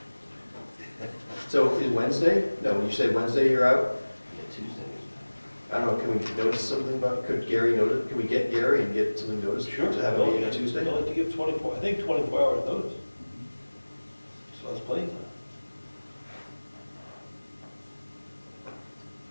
So is Wednesday? No, when you say Wednesday you're out, Yeah, Tuesday. I don't know, can we notice something about, can we get Gary and get something noticed? To have a meeting on Tuesday? You'll have to give 24, I think 24 hours notice. So that's plenty of time.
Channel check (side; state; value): both; inverted; correlation -1.00